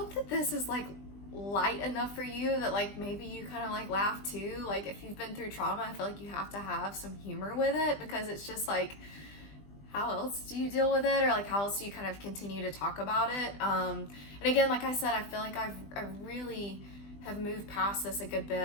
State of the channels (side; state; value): right; late; 20 ms